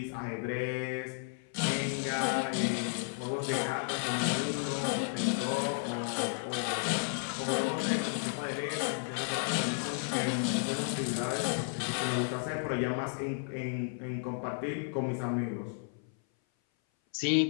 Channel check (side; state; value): right; silent; 56 dB below the other